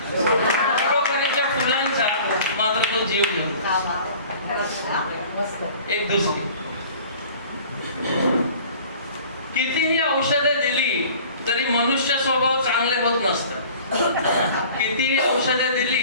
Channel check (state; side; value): inverted; both; correlation -0.46